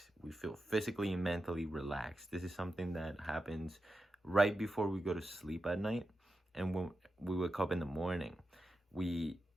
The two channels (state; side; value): normal; both; correlation 0.90